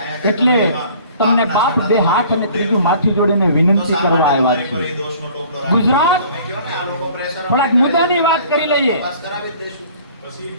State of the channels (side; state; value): both; inverted; correlation -0.51